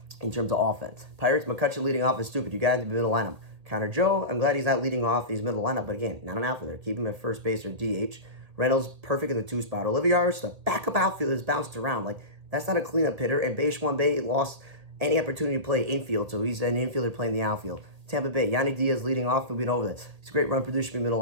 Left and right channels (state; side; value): late; left; 1.8 ms